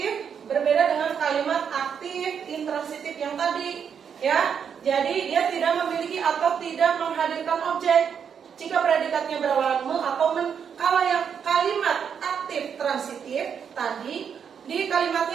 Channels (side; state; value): left; quieter; 7.4 dB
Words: berbeda dengan kalimat aktif intransitif yang tadi, ya. Jadi dia tidak memiliki atau tidak menghadirkan objek jika predikatnya berawalan me atau men. Kalau yang kalimat aktif transitif tadi di